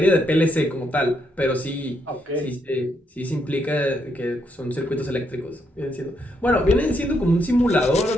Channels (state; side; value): normal; both; correlation 0.77